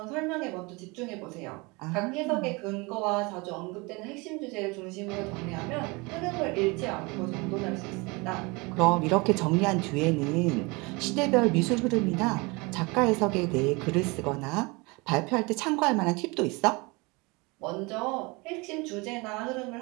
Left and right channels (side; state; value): left; quieter; 26.4 dB